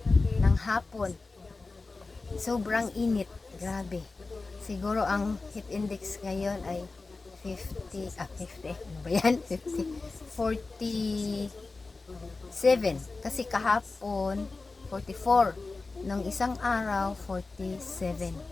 ng hapon. Sobrang init, grabe. Siguro ang heat index ngayon ay 50, 50, ano ba yan? 50, 47. Kasi kahapon, 44. Nung isang araw, 47.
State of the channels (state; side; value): quieter; right; 3.7 dB